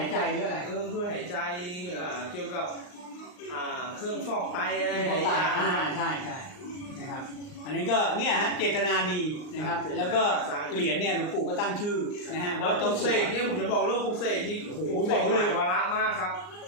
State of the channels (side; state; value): right; late; 39 ms